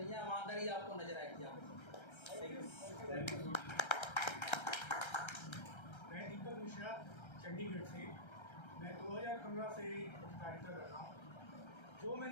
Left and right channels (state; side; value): late; right; 1.3 ms